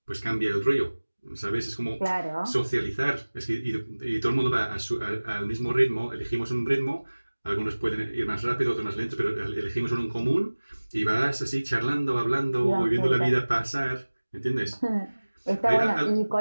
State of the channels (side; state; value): both; inverted; correlation -1.00